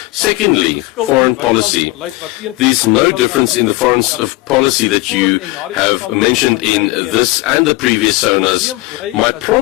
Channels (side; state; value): right; quieter; 20.6 dB